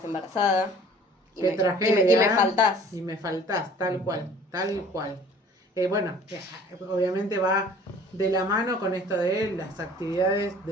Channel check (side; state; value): both; normal; correlation 0.50